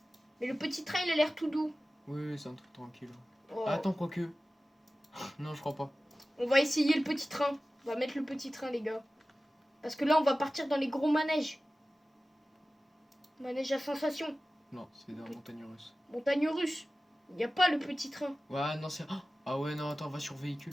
Mais le petit train, il a l'air tout doux. Oui, c'est un truc tranquille. Oh. Ah, attends, quoique. Non, je crois pas. On va essayer le petit train. On va mettre le petit train, les gars. Parce que là, on va partir dans les gros manèges. Manège à sensation. Non, c'est dans la montagne russe. Montagne russe. Il n'y a pas le petit train. Ouais, non, c'est. Ah ouais, non, attends, va sur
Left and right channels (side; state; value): both; normal; correlation 0.96